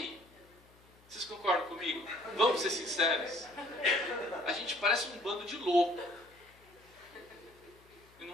Vocês concordam comigo? Vamos ser sinceros. A gente parece um bando de louco. Eu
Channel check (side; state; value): left; noise; hum, 27 dB below the sound